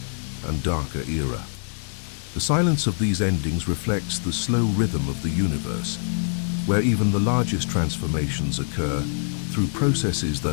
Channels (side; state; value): right; silent; digital silence